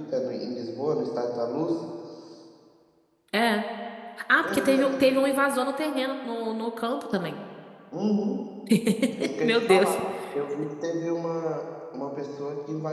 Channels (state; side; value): identical; both; correlation 1.00